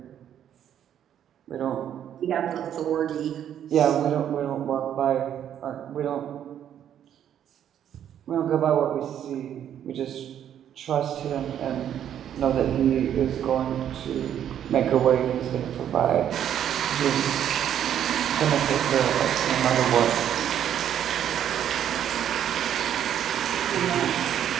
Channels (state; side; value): quieter; left; 10.0 dB